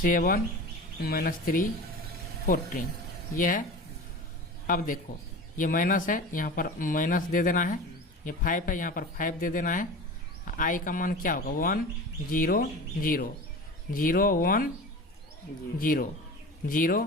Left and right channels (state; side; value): normal; both; correlation 0.33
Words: माइनस 3 14 ये है। अब देखो ये माइनस है, यहाँ पर माइनस दे देना है। ये 5 है, यहाँ पर 5 दे देना है। आई का मान क्या होगा? 1 0 0 0 1 0